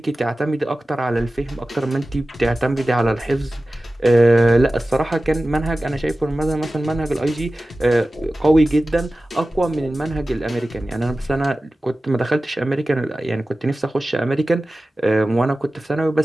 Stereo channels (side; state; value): both; normal; correlation 0.96